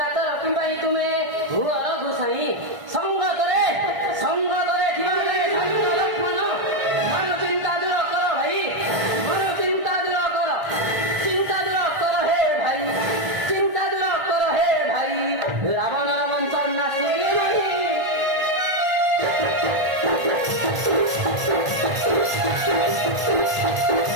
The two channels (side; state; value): left; late; 1.5 ms